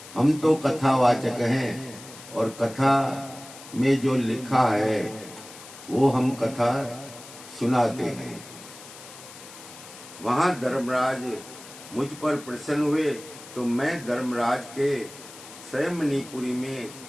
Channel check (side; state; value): left; noise; hiss, 17 dB below the sound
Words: हम तो कथावाचक हैं और कथा में जो लिखा है वो हम कथा सुनाते हैं। वहाँ धर्मराज मुझ पर प्रसन्न हुए तो मैं धर्मराज के मणिपुरी में